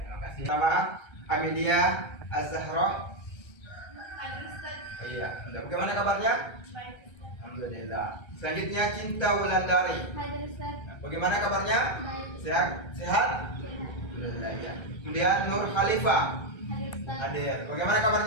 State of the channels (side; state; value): right; late; 1.3 ms